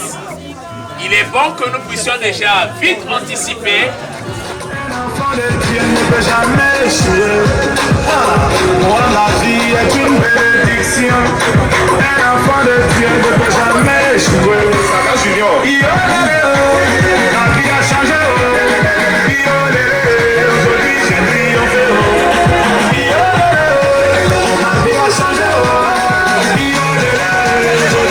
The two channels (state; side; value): identical; both; correlation 1.00